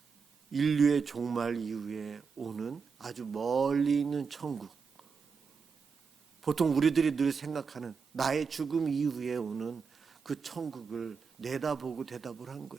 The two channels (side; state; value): left; quieter; 5.5 dB